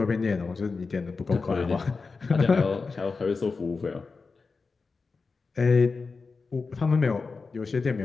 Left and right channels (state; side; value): quieter; right; 4.4 dB